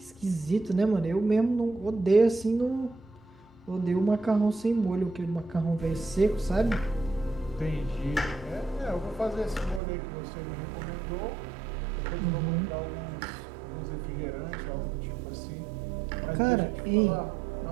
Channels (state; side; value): drops out; left; at 9.8 s